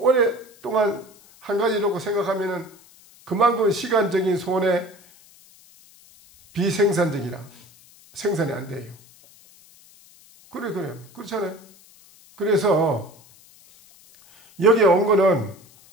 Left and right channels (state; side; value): noise; left; hiss, 26 dB below the sound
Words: 오랫동안 한 가지 놓고 생각하면은 그만큼 시간적인 손해, 비생산적이라 생산이 안 돼요. 그래 그렇잖아요. 그래서 여기에 온 거는